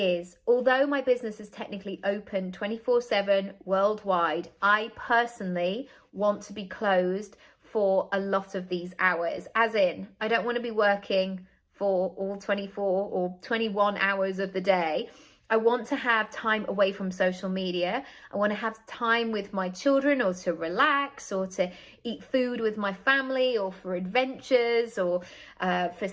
although my business is technically open 24/7 worldwide, I personally want to be closed for a lot of these hours. As in, I don't want to be working for all 24 or 21 hours of the day. I want to have time away from social media. I want to have time with my children, or to relax, or to eat food with my family, or for adventures, or for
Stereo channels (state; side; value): identical; both; correlation 1.00